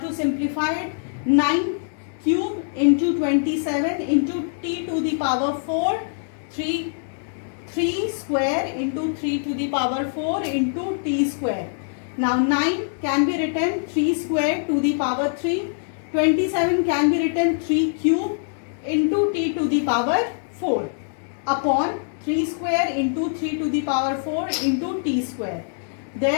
9 cube into 27 into t to the power 4, 3 square into 3 to the power 4 into t square. Now 9 can be written 3 square to the power 3. 27 can be written 3 cube into t to the power 4 upon 3 square into 3 to the power 4 into t square.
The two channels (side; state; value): right; silent; digital silence